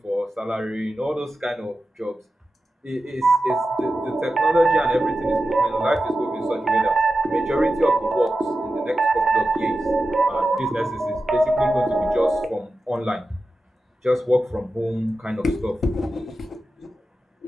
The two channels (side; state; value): both; normal; correlation 0.92